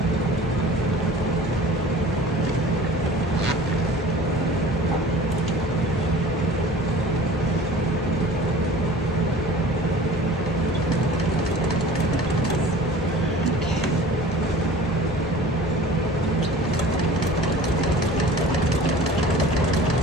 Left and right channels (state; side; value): normal; both; correlation 0.43